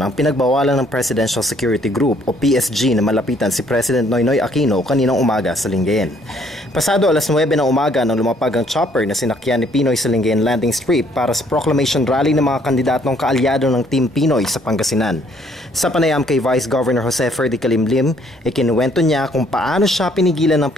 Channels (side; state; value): both; normal; correlation 0.64